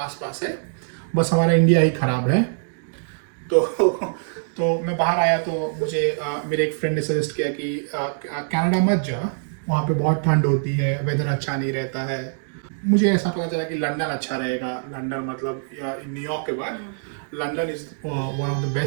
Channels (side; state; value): left; silent; digital silence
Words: है, बस हमारा इंडिया ही ख़राब है। तो मैं बाहर आया तो मुझे मेरे एक फ्रेंड ने सजेस्ट किया कि कनाडा मत जा, वहाँ पे बहुत ठंड होती है, वेदर अच्छा नहीं रहता है। मुझे ऐसा पता चला कि लंदन अच्छा रहेगा। लंदन मतलब न्यूयॉर्क के बाद London is one of the